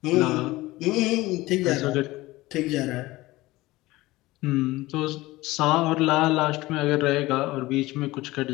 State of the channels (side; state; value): right; quieter; 19.1 dB